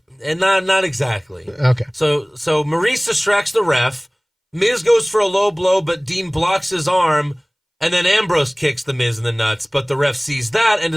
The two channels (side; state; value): both; identical; correlation 1.00